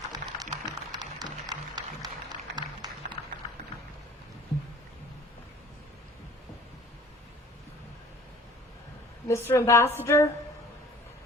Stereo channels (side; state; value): both; normal; correlation 0.48